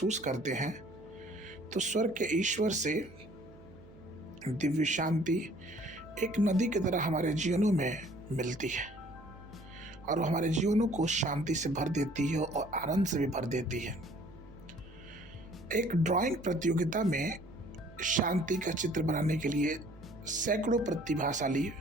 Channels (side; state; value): right; noise; hum, 21 dB below the sound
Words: करते हैं तो स्वर्ग के ईश्वर से दिव्य शांति एक नदी की तरह हमारे जीवनों में मिलती है और हमारे जीवनों को शांति से भर देती है और आनंद से भी भर देती है। एक ड्राइंग प्रतियोगिता में शांति का चित्र बनाने के लिए सैकड़ों प्रतिभाशाली